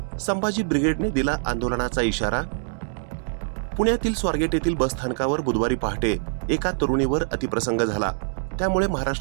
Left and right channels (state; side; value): silent; left; digital silence